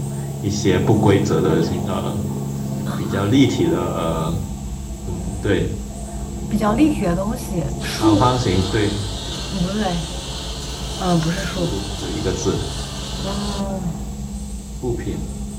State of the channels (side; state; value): both; identical; correlation 1.00